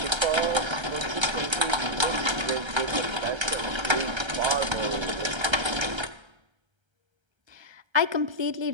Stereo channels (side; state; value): left; late; 1.3 ms